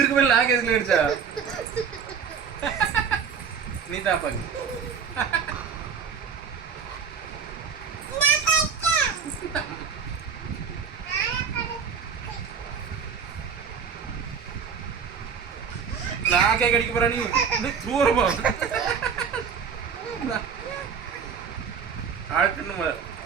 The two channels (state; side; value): quieter; left; 6.5 dB